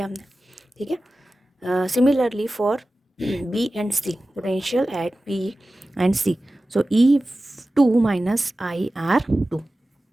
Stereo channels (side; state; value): both; normal; correlation 0.95